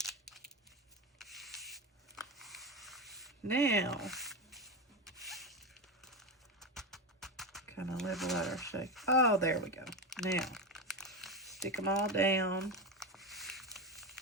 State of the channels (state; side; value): normal; both; correlation 0.16